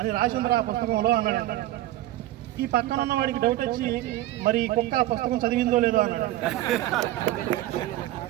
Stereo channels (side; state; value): left; quieter; 15.6 dB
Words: రాసిందిరా ఆ పుస్తకంలో అన్నాడంట. ఈ పక్కన ఉన్న వాడికి డౌట్ వచ్చి, మరి కుక్క ఆ పుస్తకం చదివిందో లేదో అన్నాడు.